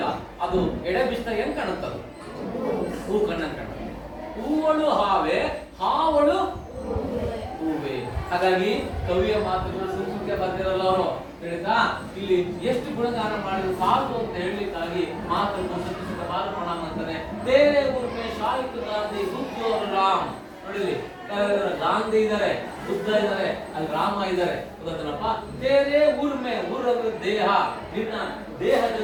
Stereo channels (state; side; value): identical; both; correlation 1.00